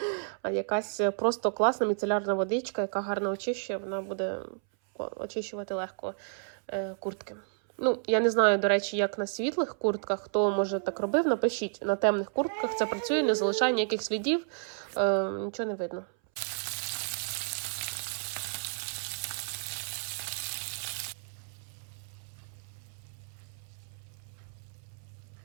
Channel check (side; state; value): left; silent; 57 dB below the other